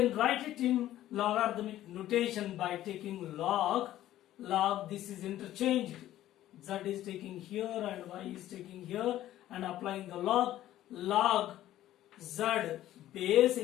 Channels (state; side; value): quieter; right; 13.5 dB